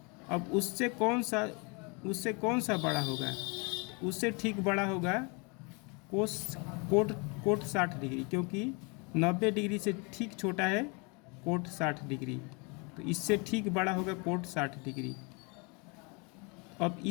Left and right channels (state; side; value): quieter; right; 31.1 dB